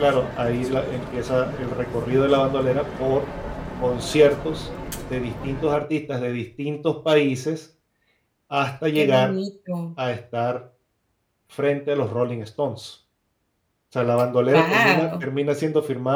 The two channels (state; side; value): identical; both; correlation 1.00